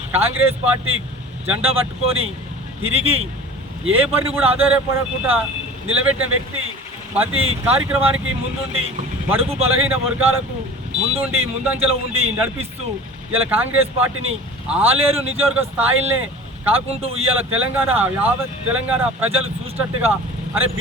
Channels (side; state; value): both; normal; correlation 0.40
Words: కాంగ్రెస్ పార్టీ జెండా పట్టుకొని తిరిగి ఏ పని కూడా ఆధారపడకుండా నిలబెట్టిన వ్యక్తి. ప్రతి కార్యక్రమానికి ముందుండి బడుగు బలహీన వర్గాలకు ముందంజలో ఉండి నడిపిస్తూ ఇలా కాంగ్రెస్ పార్టీని ఆలేరు నియోజకవర్గ స్థాయిలనే కాకుండా ఇవాళ యావత్ తెలంగాణ ప్రజలు చూసినట్టుగా, అరే